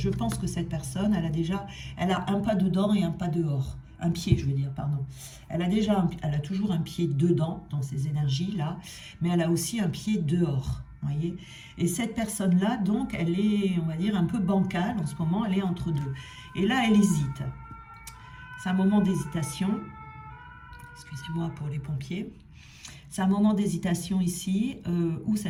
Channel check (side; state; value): both; identical; correlation 1.00